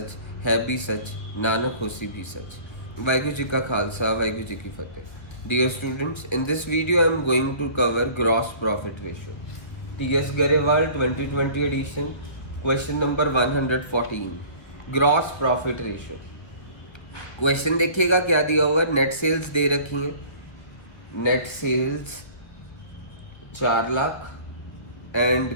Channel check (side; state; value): right; late; 1.5 ms